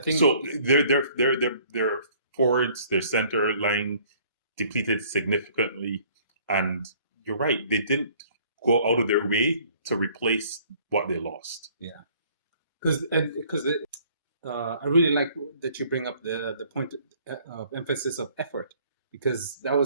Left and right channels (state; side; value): inverted; both; correlation -0.57